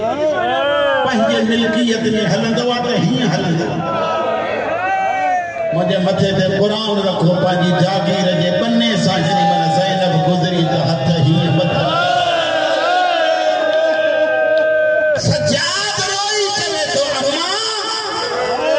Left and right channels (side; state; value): both; identical; correlation 1.00